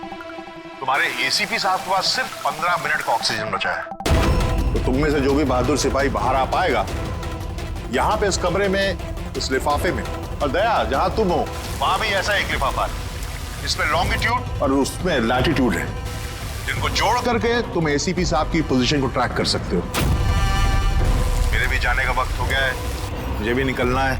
तुम्हारे एसीपी साहब के पास सिर्फ 15 मिनट का ऑक्सीजन बचा है। तो तुम में से जो भी बहादुर सिपाही बाहर आ पाएगा, यहाँ पे इस कमरे में, इस लिफाफे में, और दया जहां तुम हो वहां भी ऐसा एक लिफाफा है, इसमें लॉन्गिट्यूड और उसमें लैटिट्यूड है, जिनको जोड़ करके तुम एसीपी साहब की पोजीशन को ट्रैक कर सकते हो। मेरे भी जाने का वक्त हो गया है, मुझे भी निकलना है।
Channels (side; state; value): both; identical; correlation 1.00